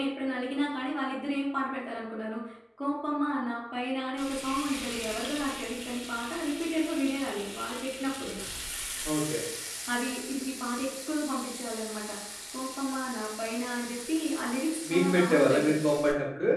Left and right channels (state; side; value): identical; both; correlation 1.00